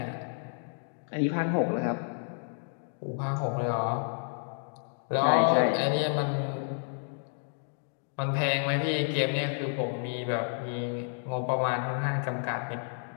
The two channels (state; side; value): silent; right; 57 dB below the other